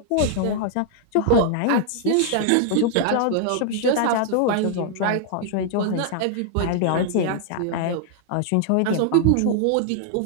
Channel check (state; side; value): different; both; correlation 0.00